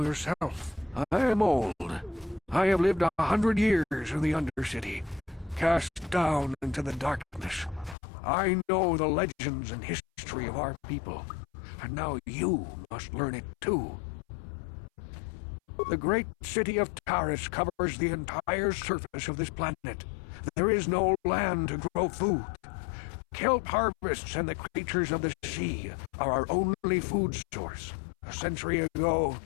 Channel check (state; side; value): drops out; right; at 8.0 s